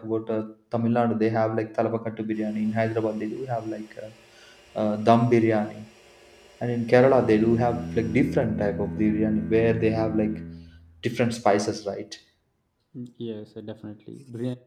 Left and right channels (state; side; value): identical; both; correlation 1.00